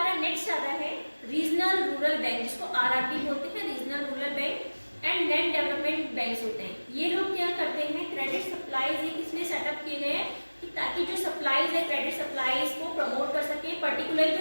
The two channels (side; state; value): both; inverted; correlation -1.00